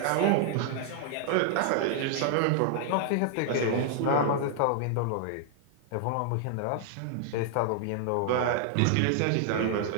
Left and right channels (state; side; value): different; both; correlation -0.01